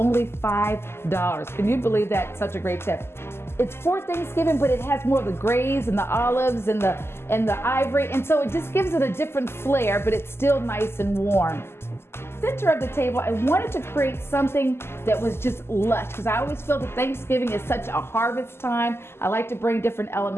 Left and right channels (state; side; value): late; right; 0.12 ms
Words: $5. Can you believe that? Such a great tip. It's for Thanksgiving, but it has more of the grays and the olives and the ivory, and so it just gives it a different flair, but it's still nice and warm. Center of the table, I wanted to create something that was just lush, because I always feel that Thanksgiving is such a harvest time. I like to bring different